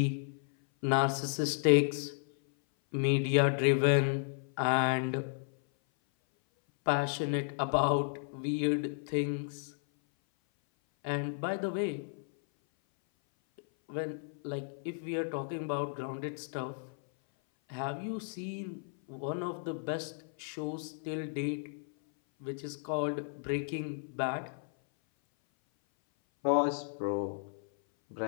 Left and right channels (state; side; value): silent; right; 56 dB below the other